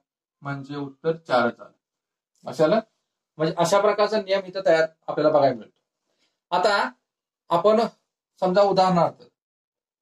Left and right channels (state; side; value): identical; both; correlation 1.00